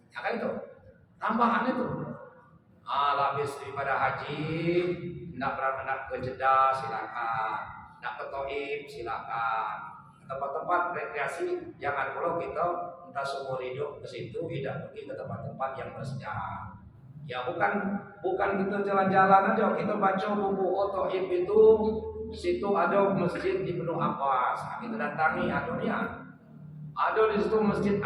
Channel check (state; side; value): identical; both; correlation 1.00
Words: Ya kan itu, tambahan itu. Habis daripada haji, nak ke Jeddah silakan, nak ke Taif silakan. Tempat-tempat rekreasi jangan kalau kita entah seumur hidup ke situ, tidak pergi ke tempat-tempat yang bersejarah. Ya bukan kita jalan-jalan aja, kita baca buku Taif itu, di situ ada masjid di Ibnu Abbas, kita datangi ada di situ masjid